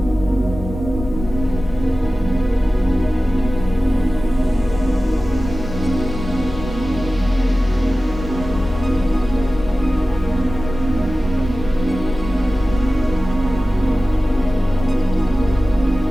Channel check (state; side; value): normal; both; correlation 0.96